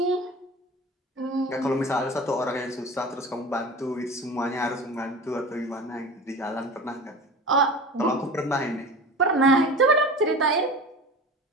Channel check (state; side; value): normal; both; correlation 0.35